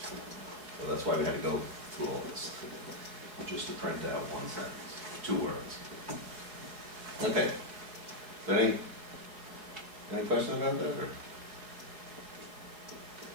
So that's why we had to go through all this, just to print out one sentence, 2 words. Okay. Any questions about that? Or?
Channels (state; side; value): late; left; 4.6 ms